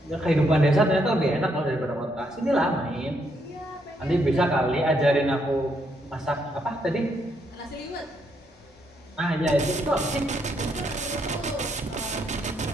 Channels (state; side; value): normal; both; correlation 0.75